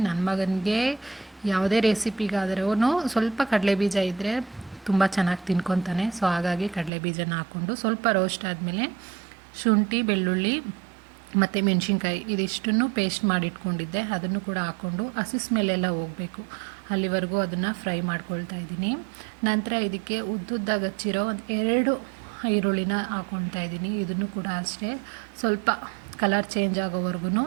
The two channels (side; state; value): left; drops out; at 6.9 s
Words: ನನ್ನ ಮಗನಿಗೆ ಯಾವುದೇ ರೆಸಿಪಿಗಾದ್ರೂ ಸ್ವಲ್ಪ ಕಡಲೆ ಬೀಜ ಇದ್ದರೆ ತುಂಬ ಚೆನ್ನಾಗಿ ತಿನ್ಕೊತಾನೆ. ಸೊ ಹಾಗಾಗಿ ಕಡಲೆ ಬೀಜನ ಹಾಕ್ಕೊಂಡು ಸ್ವಲ್ಪ ರೋಸ್ಟ್ ಆದಮೇಲೆ ಶುಂಠಿ, ಬೆಳ್ಳುಳ್ಳಿ ಮತ್ತು ಮೆಣಸಿನ್ಕಾಯಿ ಇದಿಷ್ಟನ್ನು ಪೇಸ್ಟ್ ಮಾಡಿಟ್ಕೊಂಡಿದ್ದೆ, ಅದನ್ನು ಕೂಡ ಹಾಕ್ಕೊಂಡು ಹಸಿ ಸ್ಮೆಲ್ಲೆಲ್ಲ ಹೋಗಬೇಕು ಅಲ್ಲಿವರೆಗೂ ಅದನ್ನು ಫ್ರೈ ಮಾಡ್ಕೊಳ್ತಾ ಇದ್ದೀನಿ. ನಂತರ ಇದಕ್ಕೆ ಉದ್ದುದ್ದಾಗಿ ಹಚ್ಚಿರೋ ಒಂದು 2 ಈರುಳ್ಳಿನ ಹಾಕ್ಕೊಳ್ತಾ ಇದ್ದೀನಿ. ಇದನ್ನು ಕೂಡ ಅಷ್ಟೇ ಸ್ವಲ್ಪ ಕಲರ್ ಚೇಂಜ್ ಆಗೋವರೆಗೂ